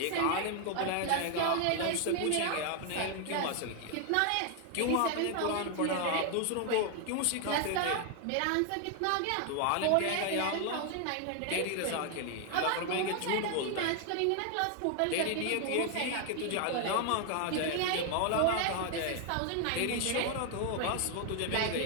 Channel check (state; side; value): different; both; correlation 0.00